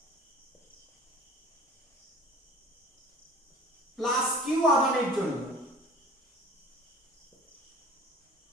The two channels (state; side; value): normal; both; correlation 0.43